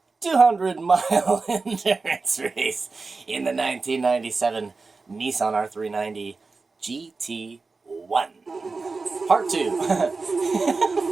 200-mile endurance race in the 1997 Nissan R390 GT1. Part 2.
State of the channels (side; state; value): left; quieter; 4.1 dB